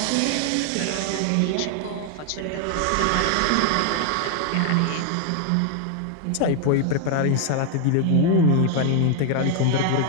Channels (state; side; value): different; both; correlation 0.00